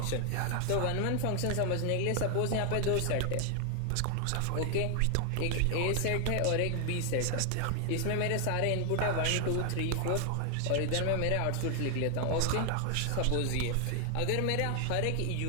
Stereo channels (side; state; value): both; different; correlation 0.00